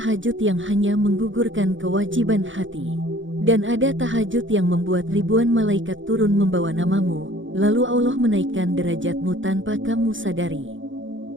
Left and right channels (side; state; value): left; late; 0.56 ms